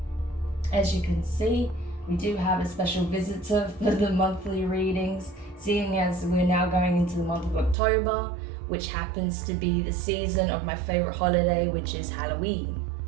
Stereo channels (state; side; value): drops out; left; at 7.8 s